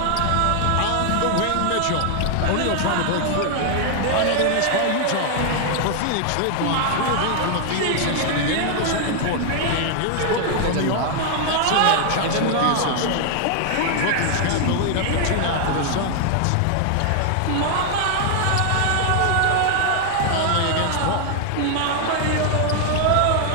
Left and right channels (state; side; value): different; both; correlation 0.00